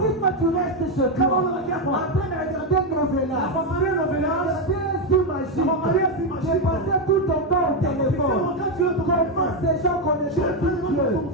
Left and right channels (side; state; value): both; normal; correlation 0.06